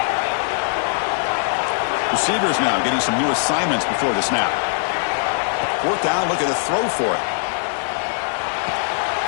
Receivers now getting some new assignments before the snap. 4th down, looking to throw for it.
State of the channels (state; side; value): silent; right; digital silence